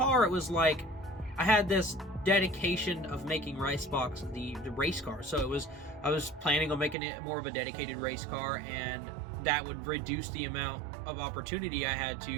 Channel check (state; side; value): drops out; left; at 7.0 s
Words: it was like I had this dedication of making Ricebox the race car. So I was planning on making it more of a dedicated race car, and that would reduce the amount of opportunity I had